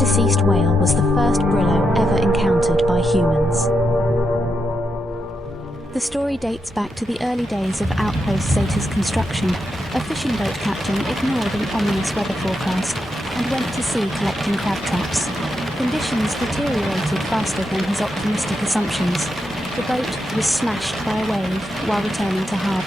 whale was the first Brillo ever encountered by humans. The story dates back to the early days of Outpost Zeta's construction. A fishing boat captain ignored an ominous weather forecast and went to sea collecting crab traps. Conditions deteriorated faster than his optimistic assumptions. The boat was smashed by a wave while returning to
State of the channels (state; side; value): normal; both; correlation 0.84